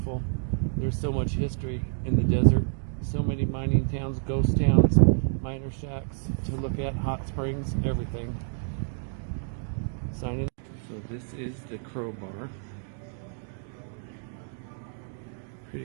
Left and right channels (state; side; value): silent; left; digital silence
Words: There's so much history in the desert. So many mining towns, ghost towns, miner shacks to look at, hot springs, everything. So this is the Crowbar.